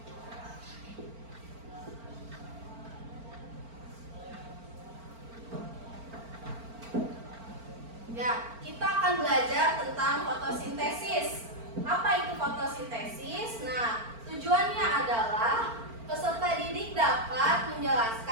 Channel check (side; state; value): left; late; 4.4 ms